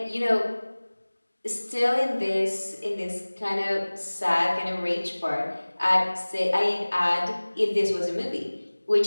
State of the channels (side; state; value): both; inverted; correlation -1.00